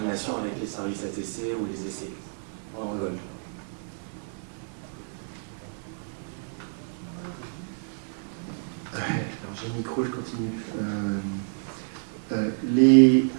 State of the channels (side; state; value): left; silent; digital silence